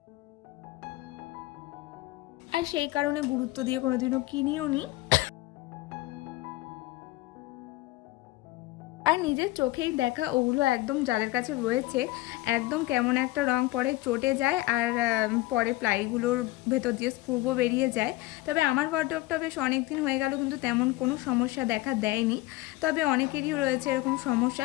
আর সেই কারণে গুরুত্ব দিয়ে কোনোদিনও কিনিও নি। আর নিজের চোখেই দেখা ওগুলো একদম যাদের কাছে রয়েছে একদম কেমন একটা রং পরে চটে যায় আর পরে প্লাইগুলোর ভেতর দিয়ে স্ক্রুও বেরিয়ে যায়। তবে আমার ওয়ার্ডরোবটা বেশ অনেক দিন হয়ে গেল কিন্তু তেমন কোনো সমস্যা দেখা দেয়নি। তবে অনেকেরই রয়েছে এরকম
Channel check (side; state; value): right; quieter; 18.7 dB